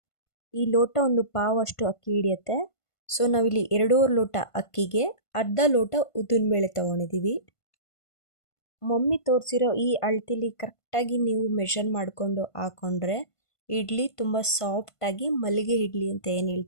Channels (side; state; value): right; late; 1.5 ms